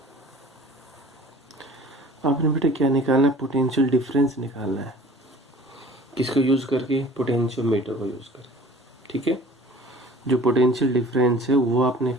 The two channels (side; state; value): both; normal; correlation 0.47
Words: आपने बेटा क्या निकालना है? पोटेंशियल डिफरेंस निकालना है। किसको यूज करके? पोटेंशियोमीटर को यूज करके। ठीक है, जो पोटेंशियल डिफरेंस है वो आपने